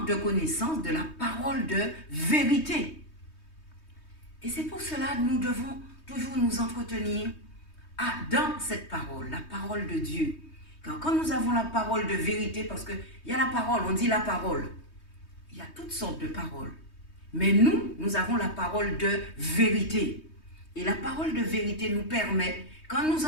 de connaissance de la parole de vérité. Et c'est pour cela que nous devons toujours nous entretenir dans cette parole, la parole de Dieu. Car quand nous avons la parole de vérité, parce qu'il y a la parole, on dit la parole. Il y a toutes sortes de paroles. Mais nous avons la parole de vérité. Et la parole de vérité nous permet, quand nous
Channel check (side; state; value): right; late; 3.2 ms